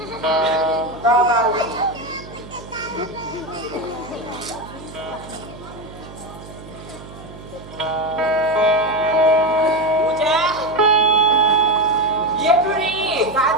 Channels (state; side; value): noise; right; hum, 16 dB below the sound